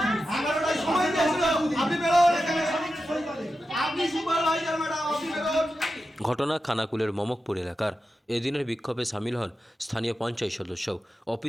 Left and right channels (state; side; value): normal; both; correlation 0.91